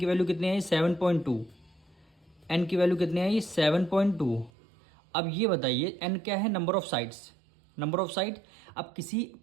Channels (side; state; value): left; drops out; at 4.5 s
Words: वैल्यू कितनी आई 7.2, n की वैल्यू कितनी आई 7.2। अब ये बताइए n क्या है, number of sides, number of side. अब किसी